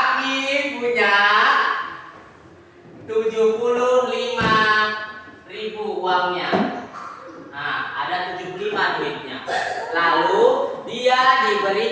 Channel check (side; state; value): both; identical; correlation 1.00